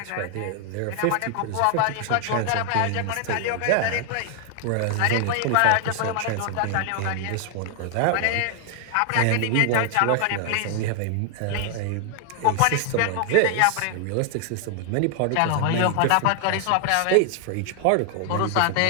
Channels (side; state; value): both; different; correlation 0.00